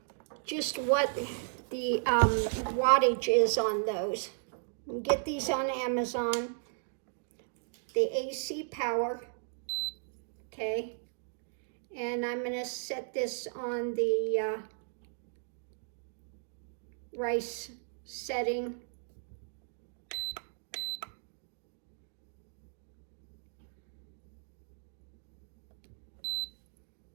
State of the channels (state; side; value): silent; left; digital silence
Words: just what the wattage is on those. You get these on Amazon. The AC power, okay? And I'm gonna set this on the rice setting.